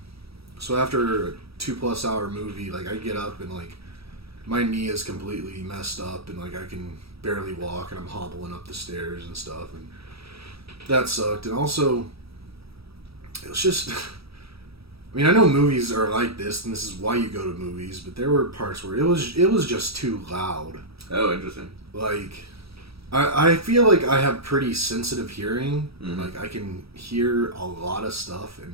after a 2+ hour movie, like I get up and like my knee is completely messed up, and like I can barely walk, and I'm hobbling up the stairs and stuff, and that sucked. And also it was just I mean, I know movies are like this, and this is why you go to movies, but there were parts where it was just too loud. Oh, interesting. Like, I feel like I have pretty sensitive hearing. Mm-hmm. Like, I can hear a lot of stuff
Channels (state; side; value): late; left; 0.77 ms